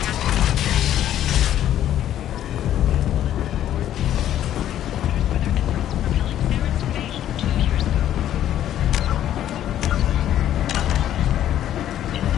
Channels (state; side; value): quieter; right; 11.5 dB